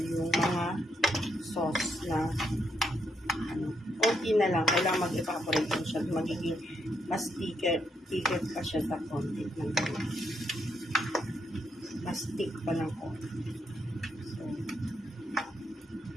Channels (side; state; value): both; normal; correlation 0.78